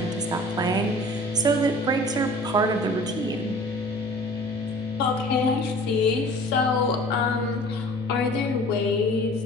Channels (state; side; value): normal; both; correlation 0.46